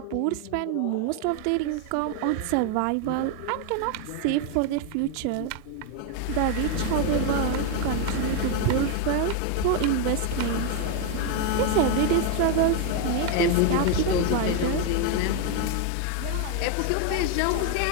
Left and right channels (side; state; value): both; different; correlation 0.01